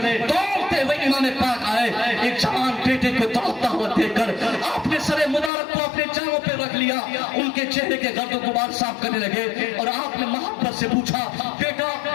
दौड़ते हुए इमाम पाक आए, एक जवान बेटे को दौड़ता हुआ देखकर आपने सरे मुबारक को अपने जांघों पे रख लिया, उनके चेहरे के गर्द गुबार साफ करने लगे, और आपने मोहब्बत से पूछा बेटा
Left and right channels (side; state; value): right; drops out; at 5.5 s